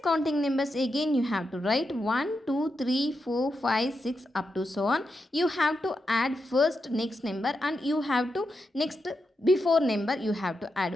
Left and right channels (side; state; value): both; normal; correlation 0.86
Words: counting numbers? Again you have to write 1, 2, 3, 4, 5, 6 up to so on. You have to add first next number and you have to next before number you have to